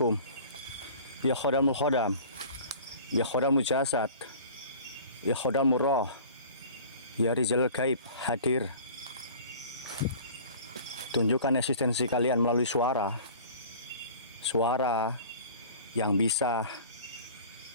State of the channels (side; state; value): both; inverted; correlation -0.44